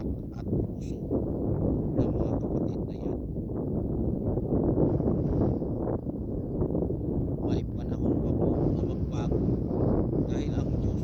at puso ng mga kapatid na yan. May panahon pa po na magbago dahil ang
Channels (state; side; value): identical; both; correlation 1.00